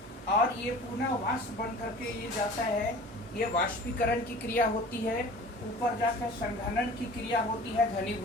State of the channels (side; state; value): both; normal; correlation 0.42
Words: और ये पुनः वाष्प बन करके ये जाता है। ये वाष्पीकरण की क्रिया होती है, ऊपर जाकर संघनन की क्रिया होती है,